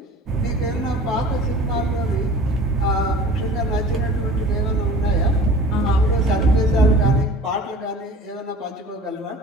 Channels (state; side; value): normal; both; correlation 0.43